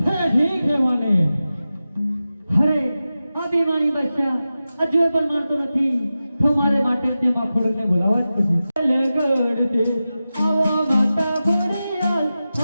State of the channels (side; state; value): both; inverted; correlation -0.94